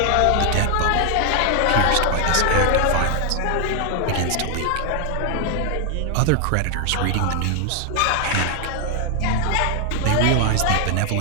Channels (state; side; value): different; both; correlation 0.00